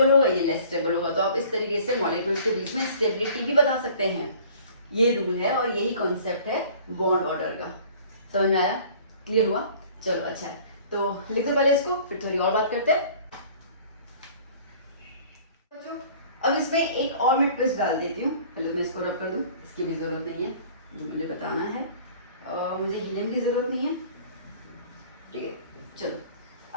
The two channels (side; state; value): both; inverted; correlation -0.49